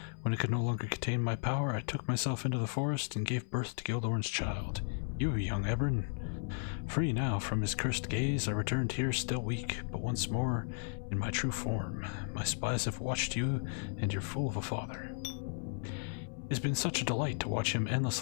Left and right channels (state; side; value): silent; right; 54 dB below the other